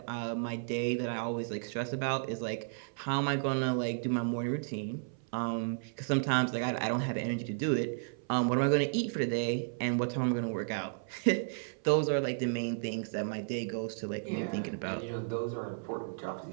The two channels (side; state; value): left; silent; 56 dB below the other